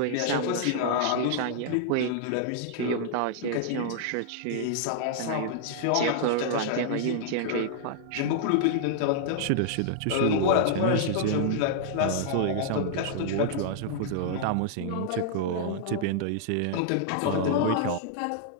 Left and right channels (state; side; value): different; both; correlation -0.01